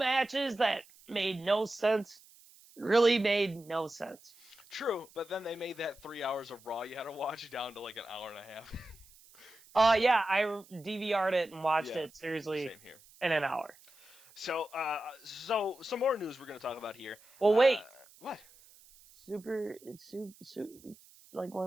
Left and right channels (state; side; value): noise; right; hiss, 25 dB below the sound